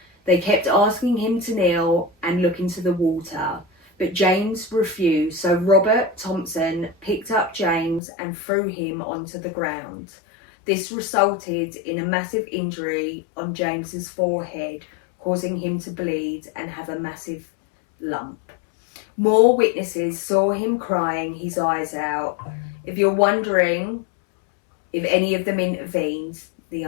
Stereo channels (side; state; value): right; drops out; at 8.0 s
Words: They kept asking him to kneel and look into the water, but James refused, so Robert Thompson picked up James and threw him onto the ground. This resulted in a massive injury on James's forehead, causing him to bleed and have a massive lump. More witnesses saw him crying his eyes out. If you're wondering if any of them intervened, the